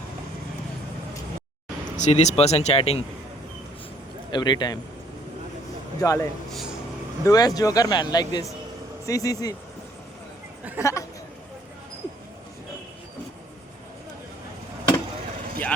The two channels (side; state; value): both; normal; correlation 0.62